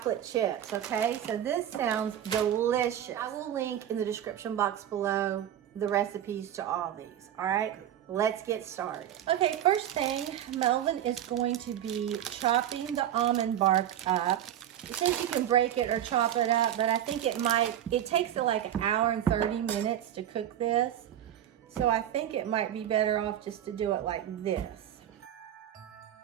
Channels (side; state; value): left; quieter; 11.0 dB